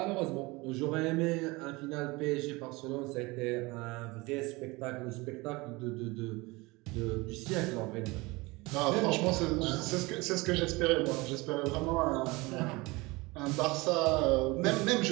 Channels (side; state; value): left; quieter; 23.5 dB